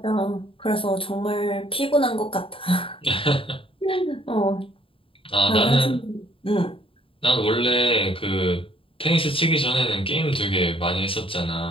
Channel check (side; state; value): right; late; 0.26 ms